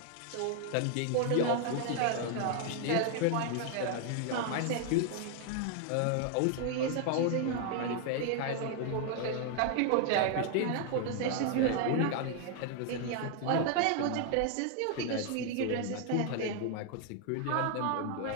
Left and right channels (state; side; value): different; both; correlation 0.00